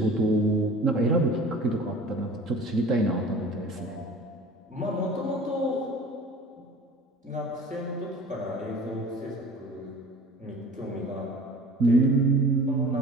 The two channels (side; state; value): both; normal; correlation 0.43